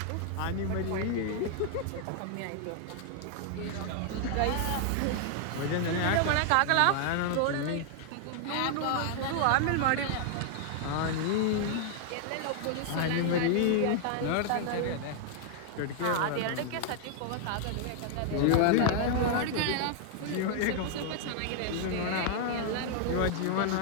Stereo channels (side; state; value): both; different; correlation -0.01